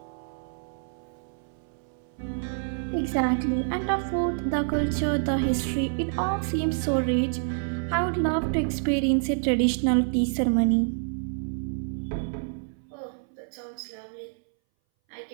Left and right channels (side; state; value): left; silent; 60 dB below the other